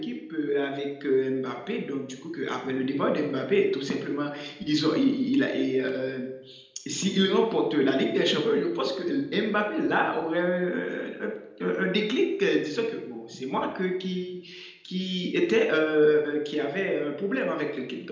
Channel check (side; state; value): both; identical; correlation 1.00